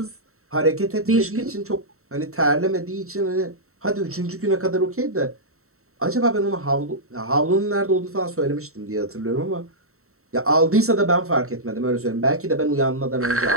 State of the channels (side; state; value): left; late; 0.63 ms